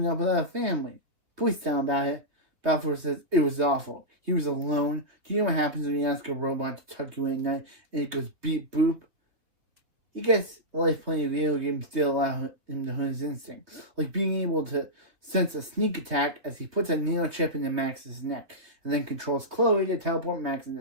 up without a family. Please tell him about it. Balfour says, it was awful. He was alone. Do you know what happens when you ask a robot to tuck you in at night and it goes beep boop? He gets life playing video games still allow him to hone his instincts, like being able to sense a sneak attack as he puts a nano chip into Max's neck and then controls Chloe to teleport Max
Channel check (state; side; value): late; left; 3.5 ms